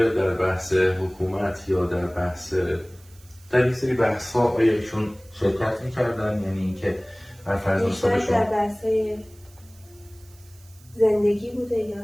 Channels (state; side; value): noise; right; hiss, 27 dB below the sound